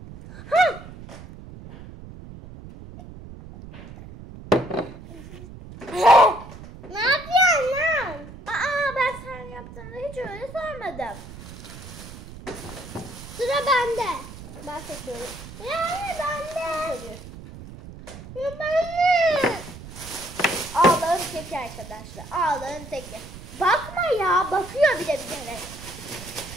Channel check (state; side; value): noise; right; rumble, 14 dB below the sound